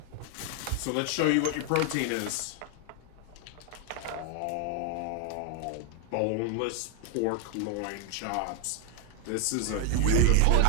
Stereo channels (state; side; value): different; both; correlation 0.00